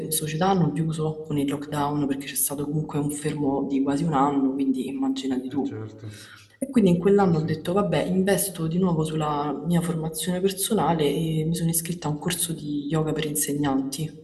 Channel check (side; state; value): both; identical; correlation 1.00